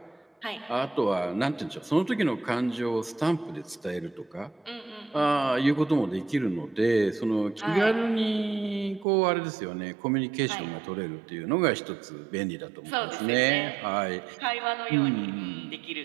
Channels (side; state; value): left; drops out; at 9.1 s